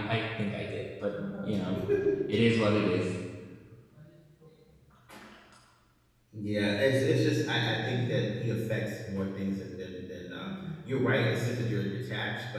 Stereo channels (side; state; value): both; identical; correlation 1.00